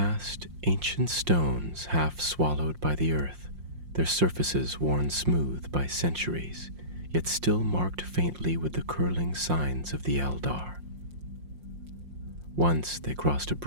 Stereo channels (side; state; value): left; late; 5.6 ms